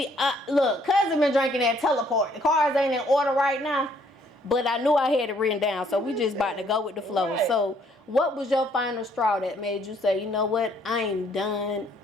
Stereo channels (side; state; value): both; normal; correlation 0.65